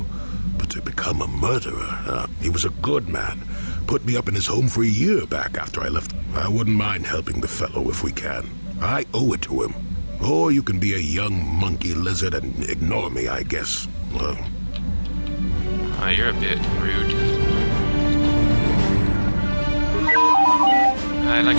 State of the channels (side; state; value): both; inverted; correlation -1.00